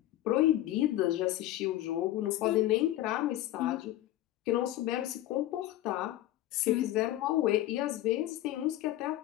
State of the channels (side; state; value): right; quieter; 14.5 dB